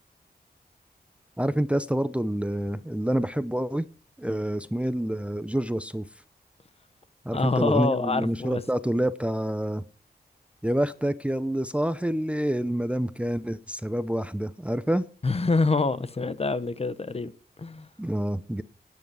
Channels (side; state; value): both; normal; correlation 0.86